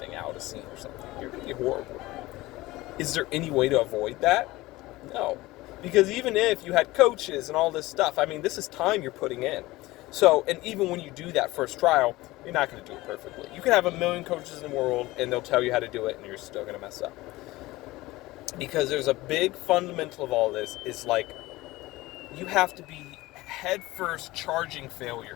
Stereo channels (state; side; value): quieter; right; 19.2 dB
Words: out a scene or something. You're going to be horrible. Is there any way to avoid that? No. Because even if you had coaches and all this stuff, I mean, this is time you're putting in. So, and even when you do that first trial, you're not going to do it perfectly. You can have a million coaches in the world, and they'll tell you how to do it, and you're still going to mess up. Because there's a big fundamental of all this is like you have to be head first charging